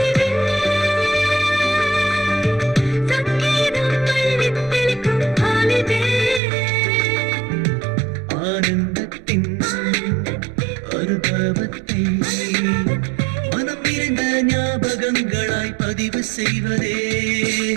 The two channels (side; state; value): left; drops out; at 6.4 s